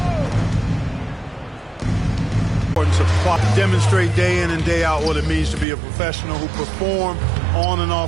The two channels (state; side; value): drops out; left; at 5.7 s